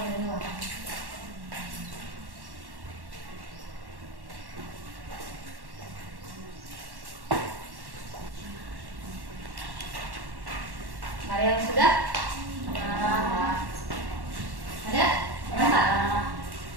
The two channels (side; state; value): left; late; 1.1 ms